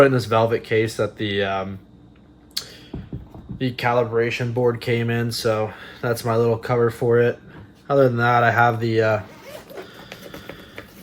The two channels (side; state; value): both; identical; correlation 1.00